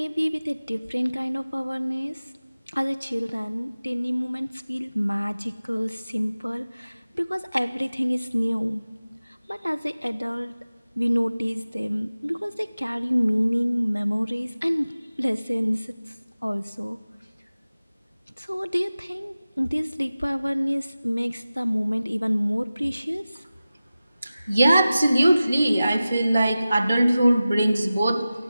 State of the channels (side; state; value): both; inverted; correlation -0.96